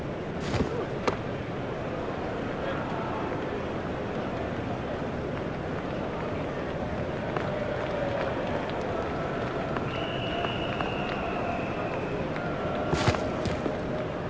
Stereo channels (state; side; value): identical; both; correlation 1.00